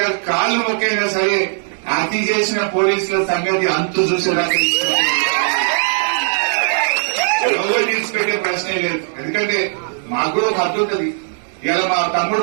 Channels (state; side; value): silent; left; 67 dB below the other